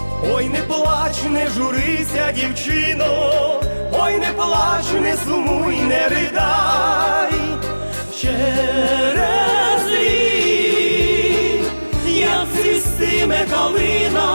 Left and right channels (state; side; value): inverted; both; correlation -1.00